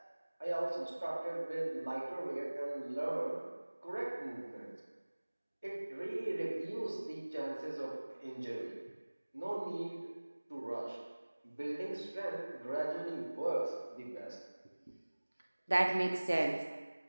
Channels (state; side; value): inverted; both; correlation -1.00